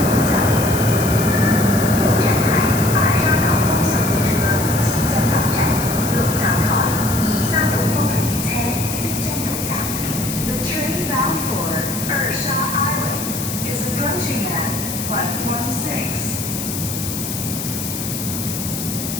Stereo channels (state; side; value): noise; left; hiss, 6 dB below the sound